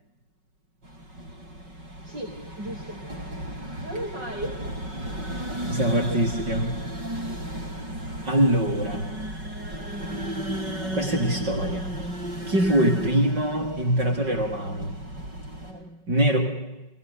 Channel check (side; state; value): left; late; 5.3 ms